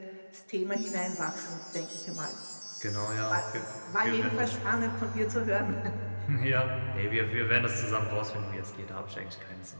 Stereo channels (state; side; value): inverted; both; correlation -1.00